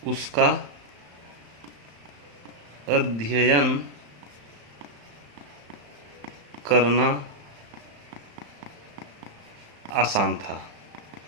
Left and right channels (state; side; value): late; left; 35 ms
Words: उसका अध्ययन करना आसान था।